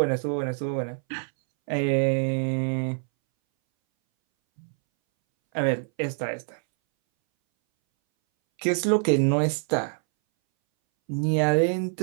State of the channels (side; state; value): left; silent; 61 dB below the other